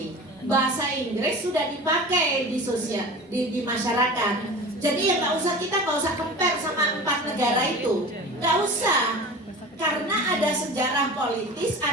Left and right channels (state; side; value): normal; both; correlation 0.35